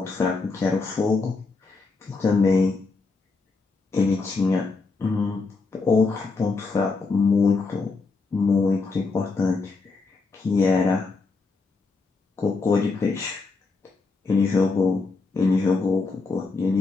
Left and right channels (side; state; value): right; quieter; 4.0 dB